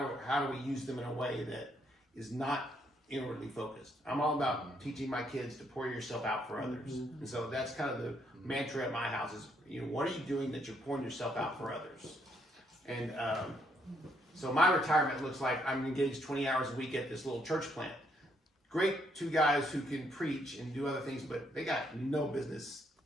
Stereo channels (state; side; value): normal; both; correlation 0.72